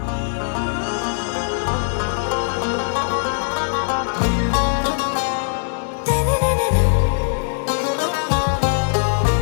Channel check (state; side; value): silent; right; digital silence